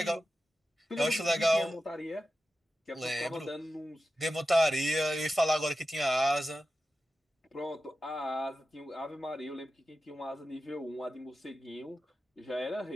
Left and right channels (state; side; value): normal; both; correlation 0.92